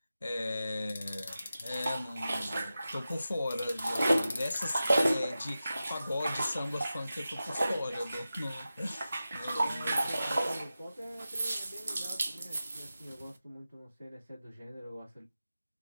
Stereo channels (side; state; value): both; inverted; correlation -0.93